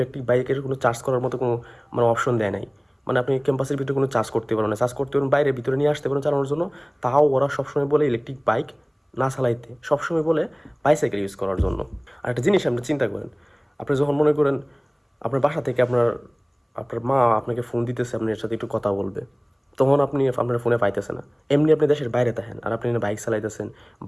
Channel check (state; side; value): identical; both; correlation 1.00